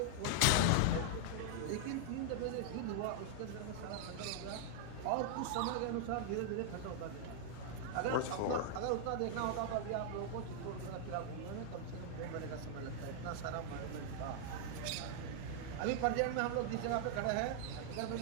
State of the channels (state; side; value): different; both; correlation -0.01